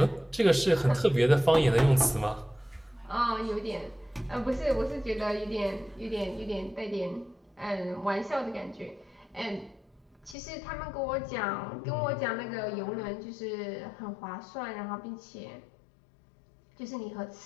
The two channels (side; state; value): right; drops out; at 10.4 s